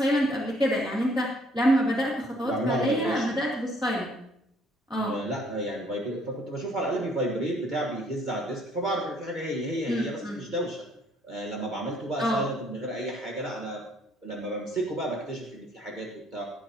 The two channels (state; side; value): normal; both; correlation 0.63